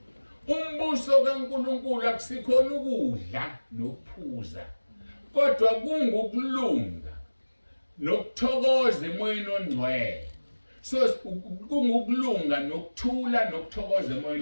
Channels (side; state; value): both; inverted; correlation -1.00